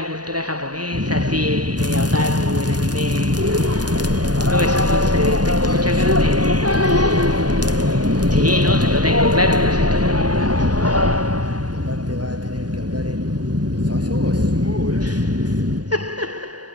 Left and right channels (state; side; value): late; left; 0.69 ms